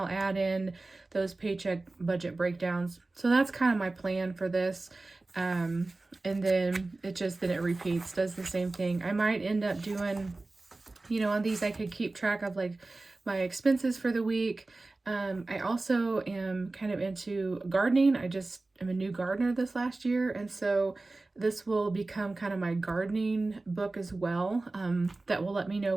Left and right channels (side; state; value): left; quieter; 3.2 dB